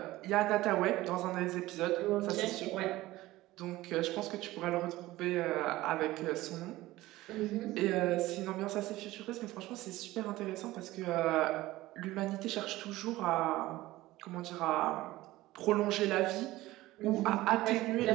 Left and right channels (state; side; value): quieter; left; 17.5 dB